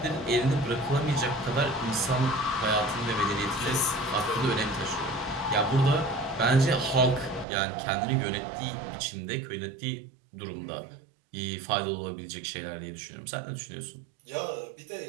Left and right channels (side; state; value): left; drops out; at 7.5 s